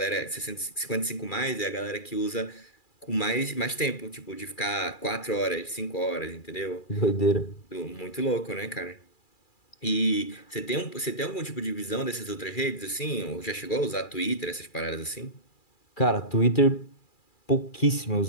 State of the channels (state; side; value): late; right; 2.4 ms